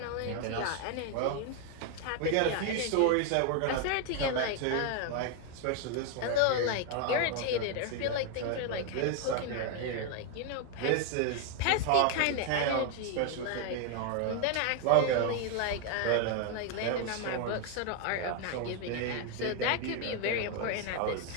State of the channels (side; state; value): both; different; correlation 0.01